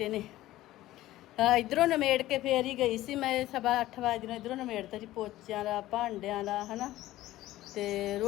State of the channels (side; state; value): right; quieter; 15.6 dB